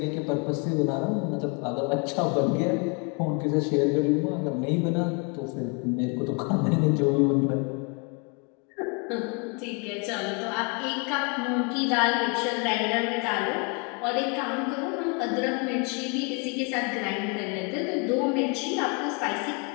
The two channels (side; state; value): right; quieter; 33.8 dB